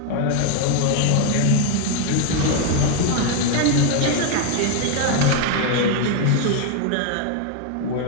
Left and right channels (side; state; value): both; different; correlation 0.01